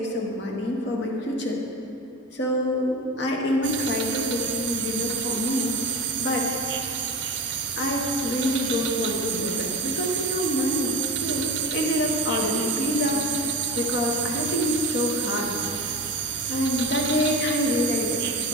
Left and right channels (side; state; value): both; normal; correlation 0.28